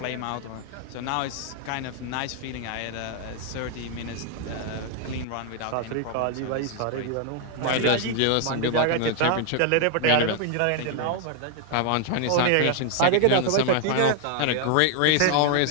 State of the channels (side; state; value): both; different; correlation 0.00